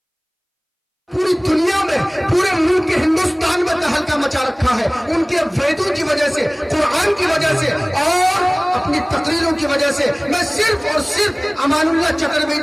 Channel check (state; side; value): identical; both; correlation 1.00